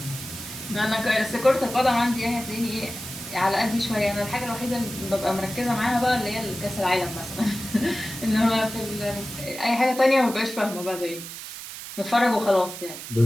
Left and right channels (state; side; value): noise; right; hiss, 10 dB below the sound